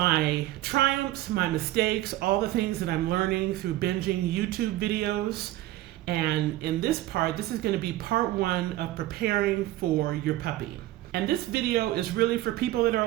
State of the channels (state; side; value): quieter; left; 15.8 dB